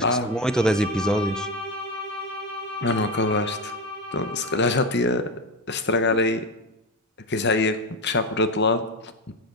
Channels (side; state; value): both; normal; correlation 0.16